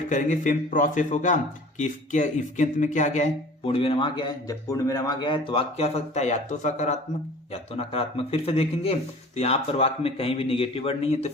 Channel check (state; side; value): normal; both; correlation 0.45